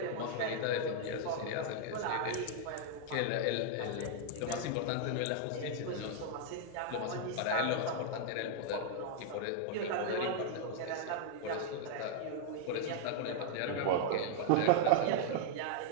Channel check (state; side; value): different; both; correlation -0.01